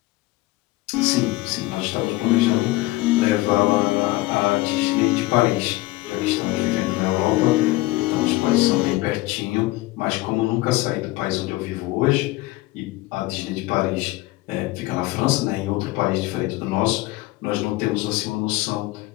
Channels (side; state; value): right; quieter; 19.4 dB